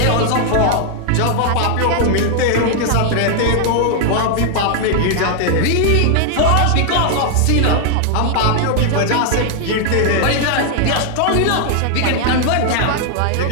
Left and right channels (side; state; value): both; different; correlation 0.00